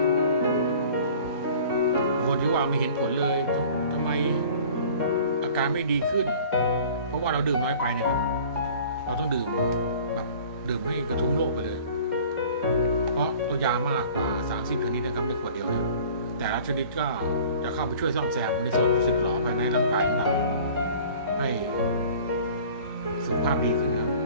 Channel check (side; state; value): both; inverted; correlation -0.47